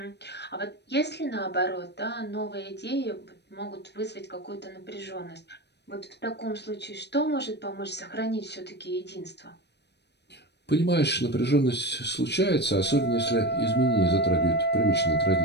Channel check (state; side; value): late; right; 0.50 ms